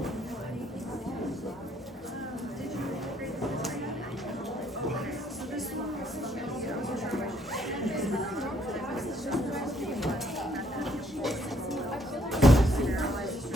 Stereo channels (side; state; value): both; normal; correlation 0.68